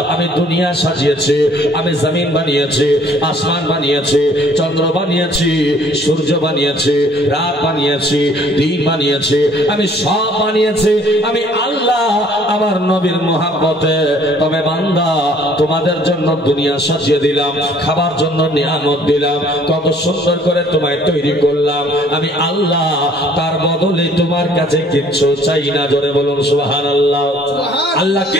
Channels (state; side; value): normal; both; correlation 0.58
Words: আমি দুনিয়া সাজিয়েছি, আমি জমিন বানিয়েছি, আসমান বানিয়েছি, চন্দ্র বানিয়েছি, সূর্য বানিয়েছি, রাত বানিয়েছি, দিন বানিয়েছি, আমি সব বানিয়েছি আমি আল্লাহ আমার নবীর মহব্বতে। তবে বান্দা তোমাদের জন্য দুনিয়া সাজিয়ে দিলাম, খাবার জন্য নিয়ামত দিলাম, কত সুন্দর করে তোমায় তৈরি করলাম আমি আল্লাহ। তার বদলে তোমার কাছে কিচ্ছু চাই না। জোরে বলুন সুবহানাল্লাহ। আল্লাহ